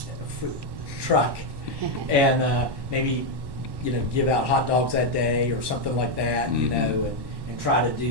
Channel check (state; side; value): late; left; 1.1 ms